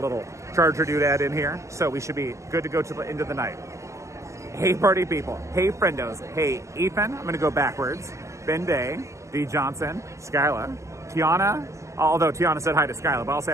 charger doodad in here, so we should be good to go to the end of the night. Hey party people, hey friendos, hey Ethan, I'm gonna go backwards, Ben Day, D Johnson, Skyla, Tiana, although Tiana said hi to Skyla, but I'll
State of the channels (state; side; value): late; left; 0.14 ms